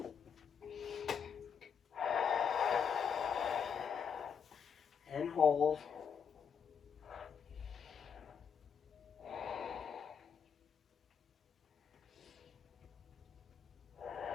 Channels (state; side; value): quieter; right; 7.0 dB